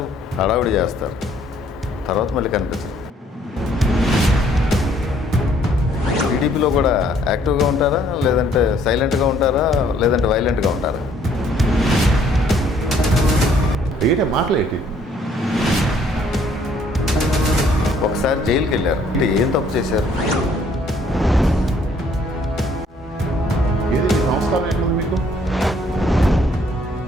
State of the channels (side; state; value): both; normal; correlation 0.63